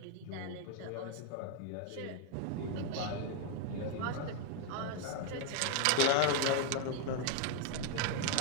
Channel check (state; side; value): different; both; correlation 0.01